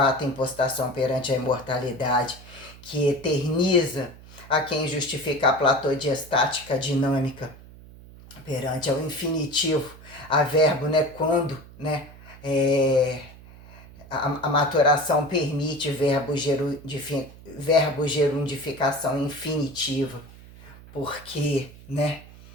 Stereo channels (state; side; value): noise; right; hum, 20 dB below the sound